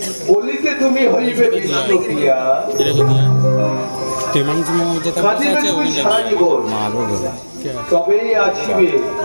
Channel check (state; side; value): inverted; both; correlation -1.00